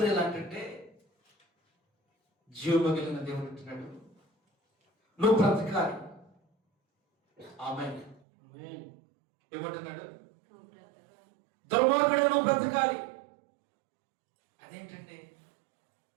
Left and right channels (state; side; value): drops out; left; at 8.2 s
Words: ఎలా అంటే జీవము కలిగిన దేవుడు అంటున్నాడు, నువ్వు బ్రతకాలి. ఆమేన్. ఏమంటున్నాడు? దుర్మార్గుడు నువ్వు బ్రతకాలి. అదేంటండి?